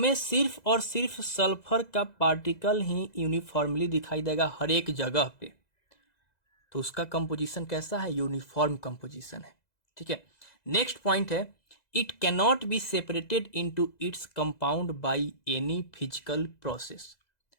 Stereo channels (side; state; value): right; late; 2.0 ms